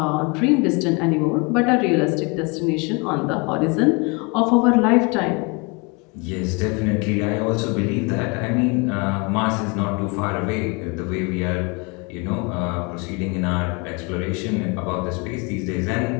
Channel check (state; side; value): quieter; right; 29.3 dB